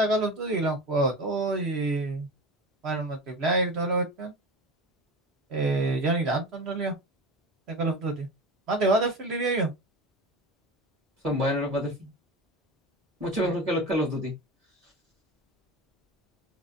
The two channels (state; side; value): normal; both; correlation 0.29